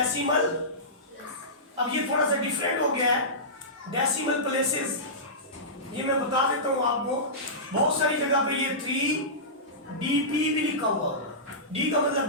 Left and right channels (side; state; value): both; normal; correlation -0.18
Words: अब ये थोड़ा सा डिफरेंट हो गया है डेसिमल प्लेसेस। ये मैं बता देता हूँ आपको, बहुत सारी जगह पे ये 3DP भी लिखा हुआ होगा। D का